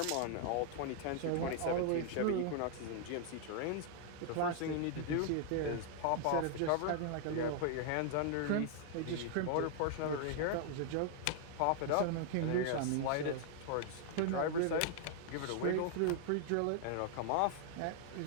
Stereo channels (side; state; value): both; different; correlation 0.00